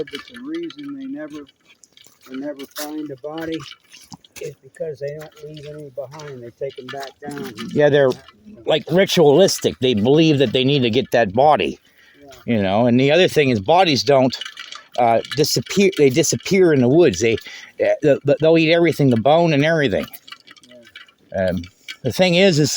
that the reason they never find a body is because they don't leave any behind. They take them back down. Yeah, they're like ritualistic. They believe that they need to get that body. Yeah. You know, and the other thing is bodies don't disappear. They disappear in the woods. They'll eat everything, the bone and everything. Yeah. The thing is,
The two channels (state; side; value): identical; both; correlation 1.00